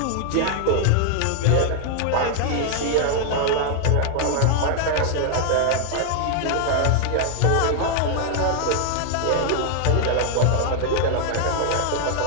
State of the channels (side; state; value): both; different; correlation 0.00